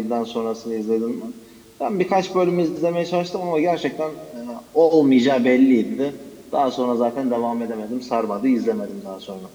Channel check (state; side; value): identical; both; correlation 1.00